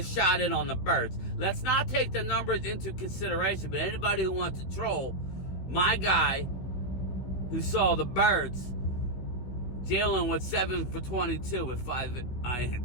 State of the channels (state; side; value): late; right; 16 ms